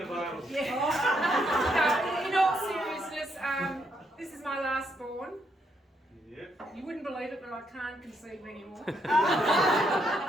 available. Yeah. No, in all seriousness, this is my last born. Yep. You wouldn't believe it, but I can't conceive anymore.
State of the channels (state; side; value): normal; both; correlation 0.76